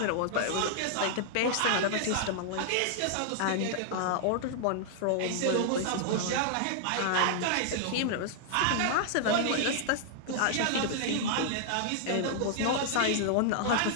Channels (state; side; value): different; both; correlation -0.01